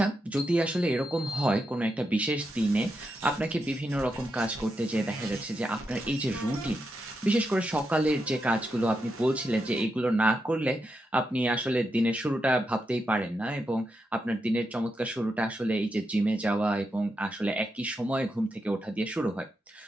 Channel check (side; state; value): both; normal; correlation 0.85